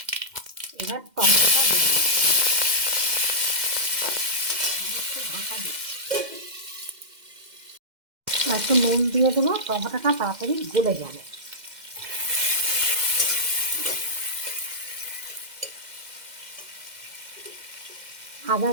এবার টমেটোটা দিয়ে দিচ্ছি, একটু ঢাকা দিচ্ছি। একটু নুন দিয়ে দেবো, টমেটোটা তাড়াতাড়ি গলে যাবে। আদা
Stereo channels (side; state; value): left; late; 2.1 ms